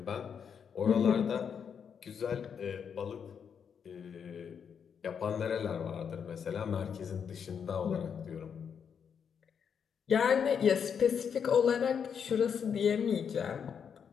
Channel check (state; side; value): quieter; right; 7.2 dB